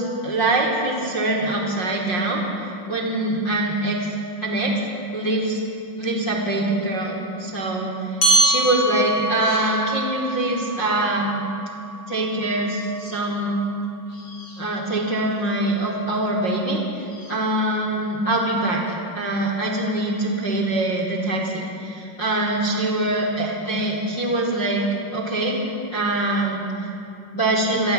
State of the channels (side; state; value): right; late; 5.6 ms